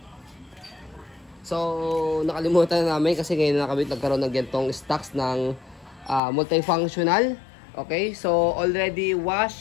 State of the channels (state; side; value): drops out; right; at 6.2 s